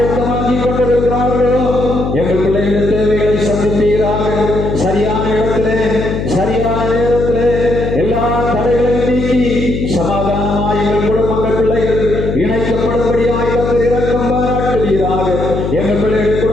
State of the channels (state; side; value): noise; left; hum, 3 dB below the sound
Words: கொண்டிருக்கிறார்களோ எங்கள் பிள்ளைகளுடைய தேவைகளை சந்திப்பீராக. சரியான இடத்திலே சரியான நேரத்திலே எல்லா தடைகளையும் நீக்கி சமாதானமாய் எங்கள் குடும்பங்கள் பிள்ளைகள் இணைக்கப்படும்படியாக கர்த்தர் இரக்கம் பாராட்டுவீராக. எங்கள் பிள்ளைகளுடைய